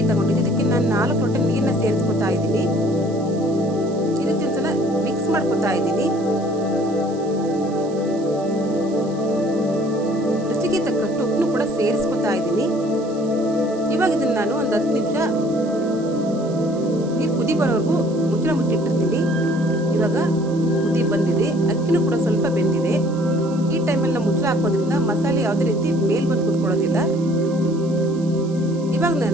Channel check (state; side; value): noise; right; hiss, 23 dB below the sound